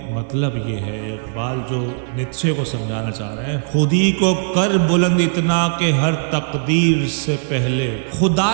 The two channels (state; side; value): silent; left; digital silence